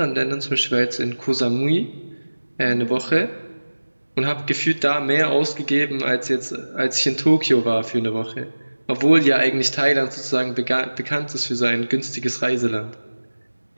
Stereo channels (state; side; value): inverted; both; correlation -1.00